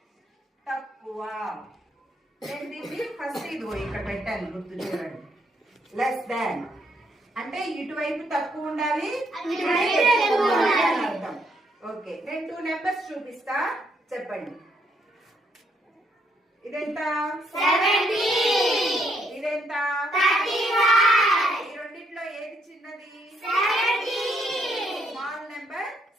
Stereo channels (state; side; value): normal; both; correlation 0.73